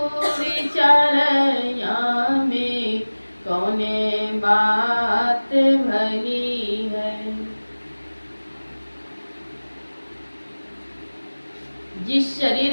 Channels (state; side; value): inverted; both; correlation -1.00